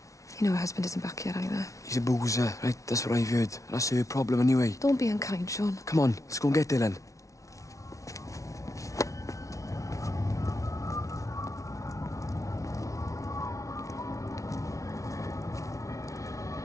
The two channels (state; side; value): late; right; 0.16 ms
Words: You know her husband isn't back yet either. He's a boozer, right? That's what I've heard. That's her problem anyway. Don't be unkind, Sean. Come on, let's go and get Dylan.